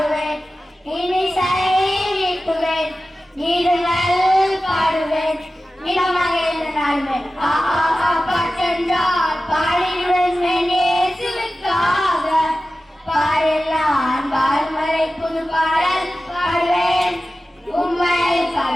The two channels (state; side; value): normal; both; correlation 0.95